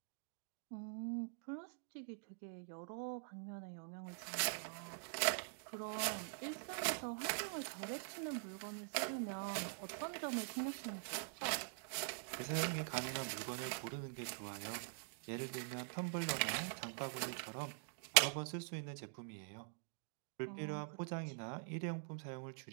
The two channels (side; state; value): left; silent; digital silence